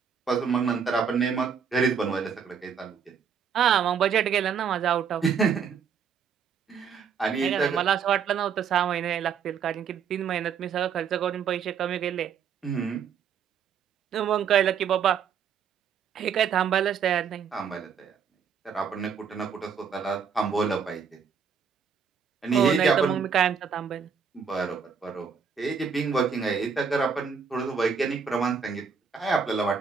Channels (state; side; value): quieter; left; 6.7 dB